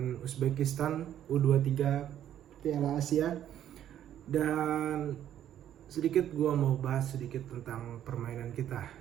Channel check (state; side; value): quieter; left; 10.9 dB